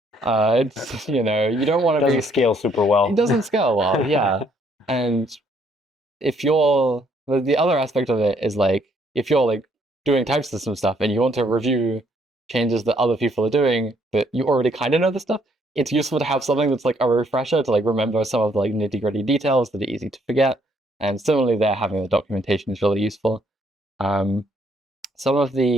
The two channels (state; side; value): normal; both; correlation 0.68